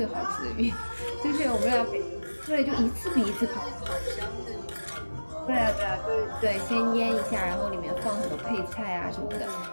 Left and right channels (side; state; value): both; inverted; correlation -1.00